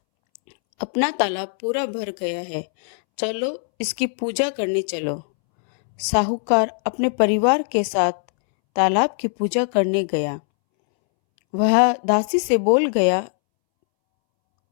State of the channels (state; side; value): silent; right; 65 dB below the other